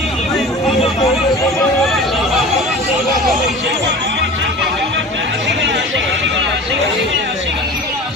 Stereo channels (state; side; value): normal; both; correlation 0.38